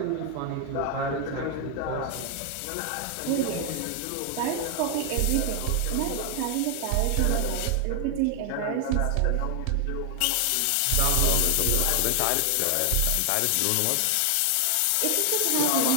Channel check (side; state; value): both; different; correlation 0.00